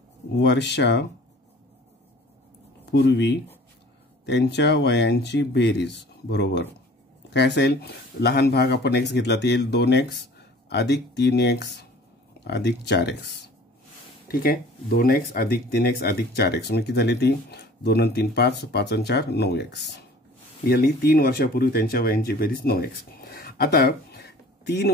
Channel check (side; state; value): both; normal; correlation 0.48